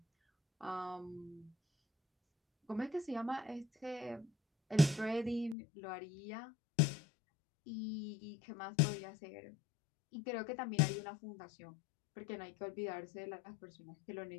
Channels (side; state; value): right; drops out; at 5.6 s